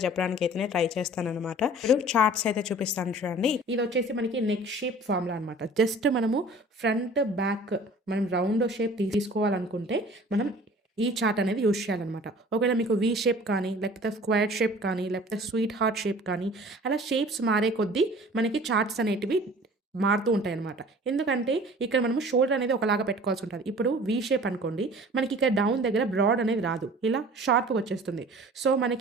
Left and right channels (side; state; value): both; normal; correlation 0.46